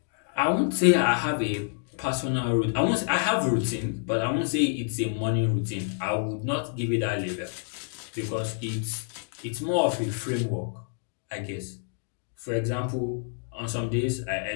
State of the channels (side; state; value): right; silent; digital silence